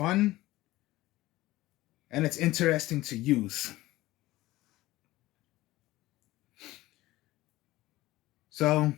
and it's interesting to use. So,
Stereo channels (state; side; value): quieter; right; 17.5 dB